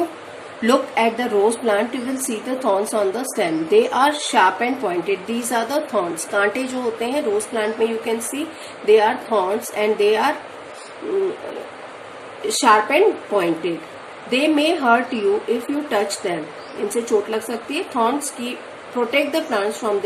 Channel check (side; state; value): both; identical; correlation 1.00